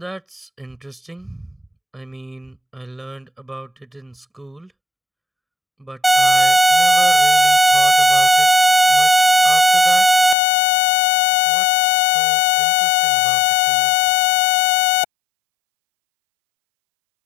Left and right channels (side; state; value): right; drops out; at 10.4 s